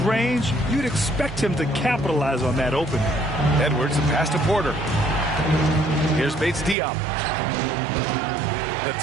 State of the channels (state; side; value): drops out; left; at 6.8 s